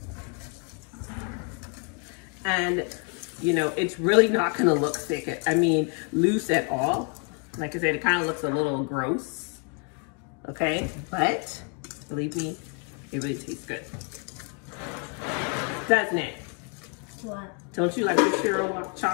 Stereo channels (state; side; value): quieter; right; 37.1 dB